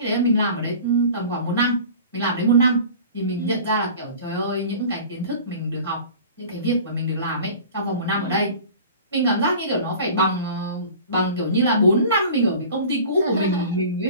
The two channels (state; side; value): inverted; both; correlation -0.42